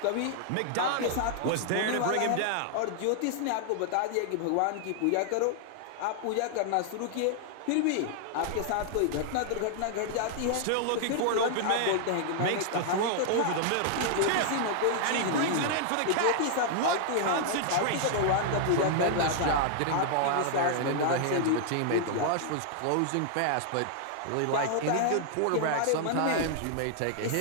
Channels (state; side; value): different; both; correlation -0.01